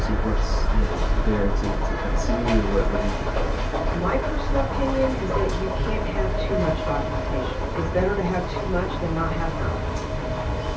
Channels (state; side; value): identical; both; correlation 1.00